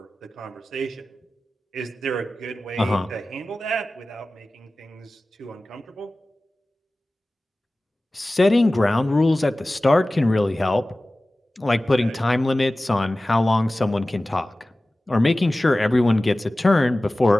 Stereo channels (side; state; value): both; normal; correlation 0.97